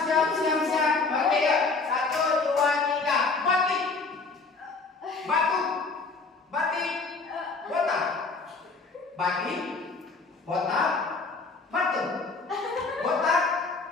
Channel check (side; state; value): right; quieter; 4.1 dB